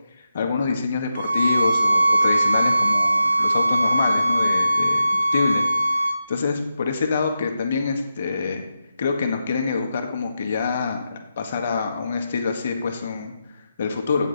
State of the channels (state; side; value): inverted; both; correlation -0.88